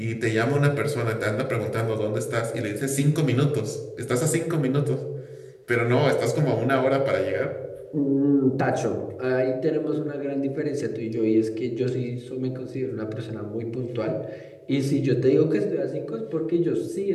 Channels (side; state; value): both; identical; correlation 1.00